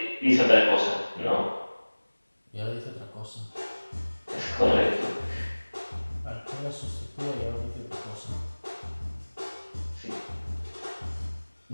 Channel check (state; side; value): inverted; both; correlation -1.00